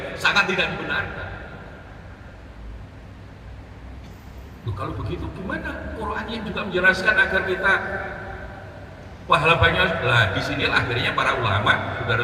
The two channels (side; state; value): both; identical; correlation 1.00